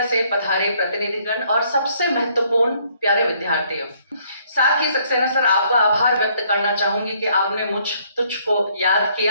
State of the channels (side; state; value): both; inverted; correlation -0.65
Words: से पधारे प्रतिनिधिगण और सबसे महत्वपूर्ण प्यारे विद्यार्थियों, साथ ही सक्सेना सर आपका आभार व्यक्त करना चाहूंगी कि आपने तुझको याद